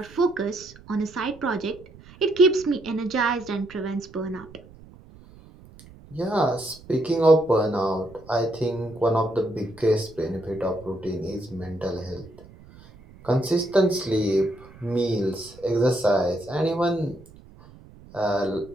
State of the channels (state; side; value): noise; right; rumble, 21 dB below the sound